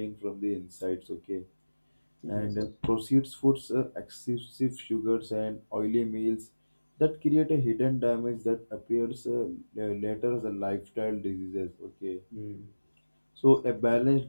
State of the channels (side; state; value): both; inverted; correlation -1.00